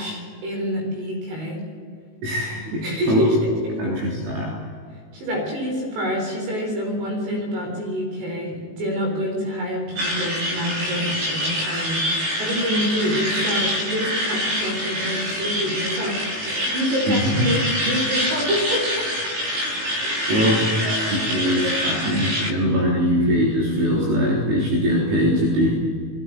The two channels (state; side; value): late; left; 19 ms